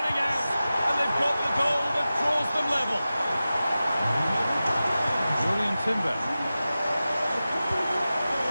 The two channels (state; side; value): inverted; both; correlation -0.95